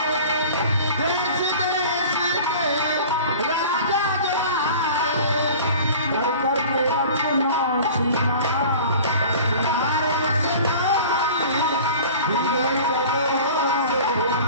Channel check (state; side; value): inverted; both; correlation -0.42